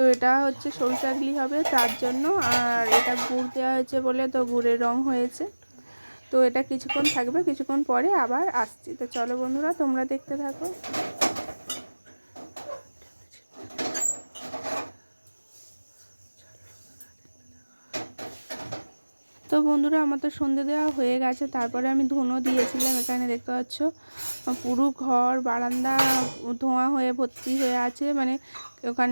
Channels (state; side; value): inverted; both; correlation -1.00